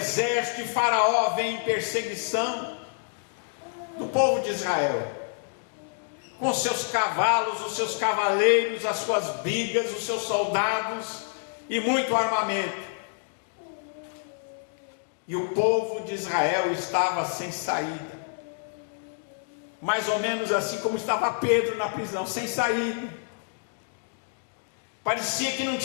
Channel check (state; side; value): silent; right; digital silence